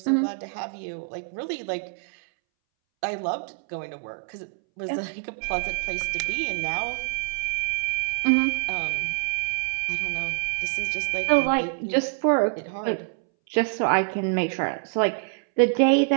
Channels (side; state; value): left; silent; 61 dB below the other